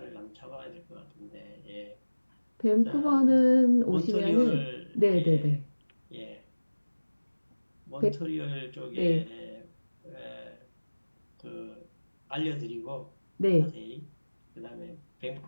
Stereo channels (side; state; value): both; inverted; correlation -1.00